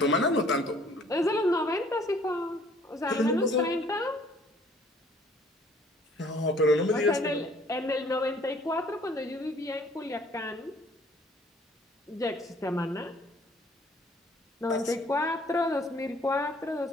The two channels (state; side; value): normal; both; correlation 0.58